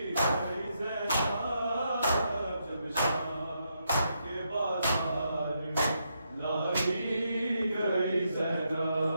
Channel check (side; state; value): both; inverted; correlation -0.80